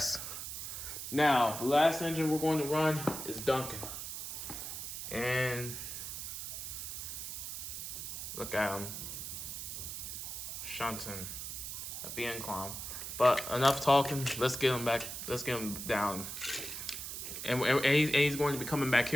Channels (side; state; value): right; noise; hiss, 6 dB below the sound